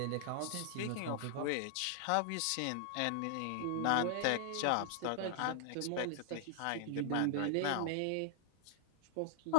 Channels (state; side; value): different; both; correlation 0.00